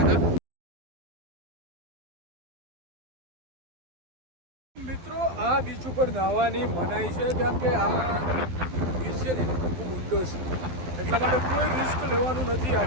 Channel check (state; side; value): late; left; 12 ms